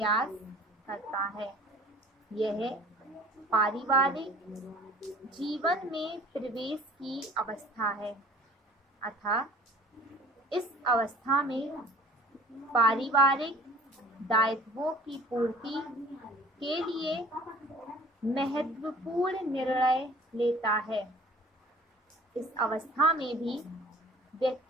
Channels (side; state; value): both; normal; correlation 0.48